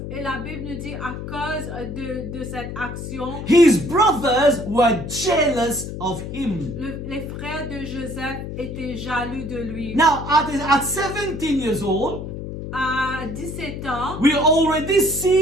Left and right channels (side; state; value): left; noise; hum, 8 dB below the sound